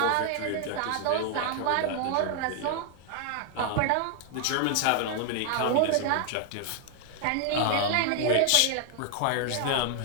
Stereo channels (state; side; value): different; both; correlation 0.00